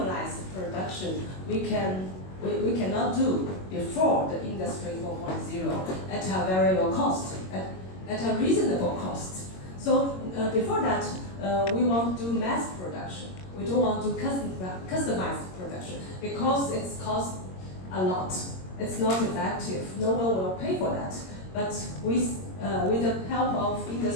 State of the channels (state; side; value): late; right; 22 ms